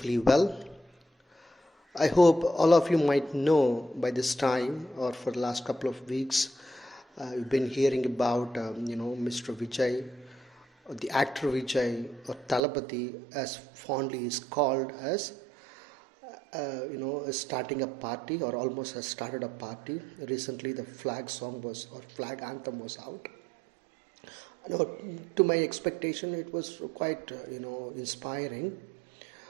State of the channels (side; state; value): left; drops out; at 12.6 s